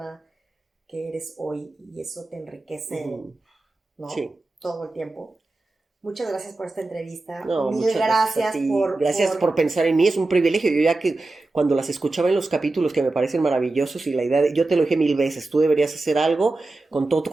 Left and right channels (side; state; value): left; quieter; 3.1 dB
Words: que eres hoy y eso te enriquece, ¿no? Sí. Todo el tiempo. Muchas gracias por esta entrevista. No, Mil gracias por pensar en mí, es un privilegio. Yo ya que cuando las escuchaba en los capítulos que me parecen maravillosos y la idea yo te lo dije 1000 veces, tú deberías hacer algo con todo tu